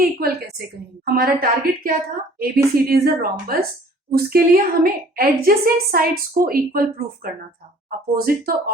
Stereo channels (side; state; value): both; normal; correlation 0.53